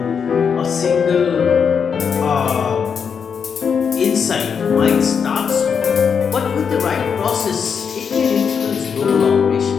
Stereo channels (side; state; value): right; quieter; 6.6 dB